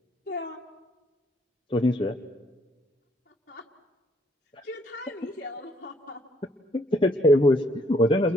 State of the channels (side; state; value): both; normal; correlation 0.67